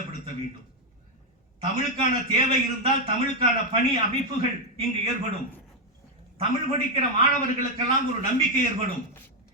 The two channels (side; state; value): both; normal; correlation 0.03